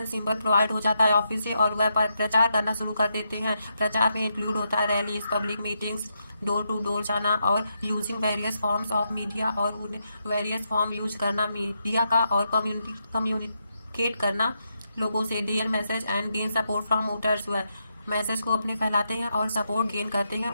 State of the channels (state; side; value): inverted; both; correlation -0.82